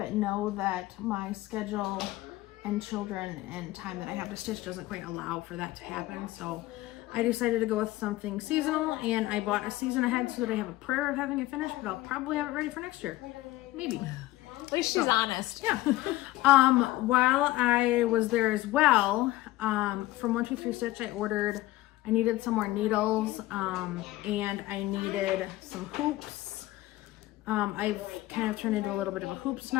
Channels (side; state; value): right; quieter; 17.5 dB